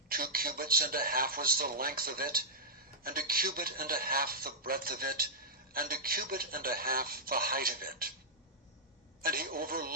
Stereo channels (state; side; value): normal; both; correlation -0.11